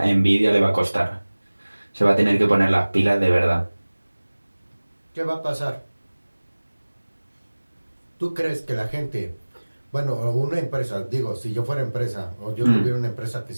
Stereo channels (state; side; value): inverted; both; correlation -1.00